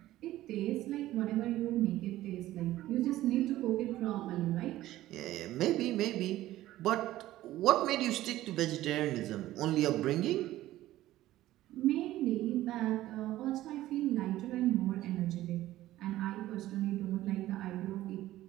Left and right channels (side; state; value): left; quieter; 15.1 dB